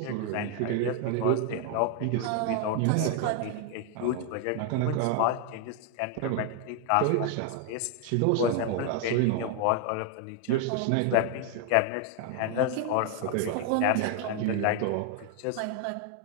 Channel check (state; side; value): different; both; correlation 0.00